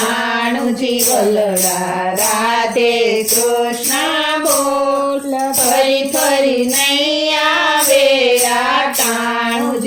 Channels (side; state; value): both; identical; correlation 1.00